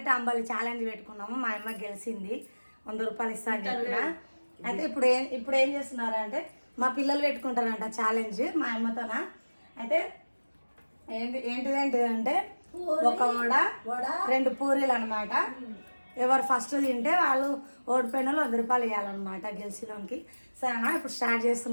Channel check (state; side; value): inverted; both; correlation -1.00